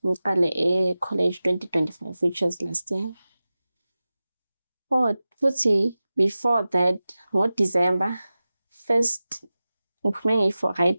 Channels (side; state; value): both; inverted; correlation -0.95